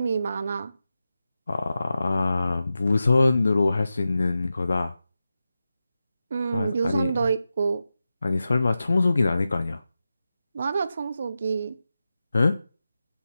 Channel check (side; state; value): both; inverted; correlation -0.91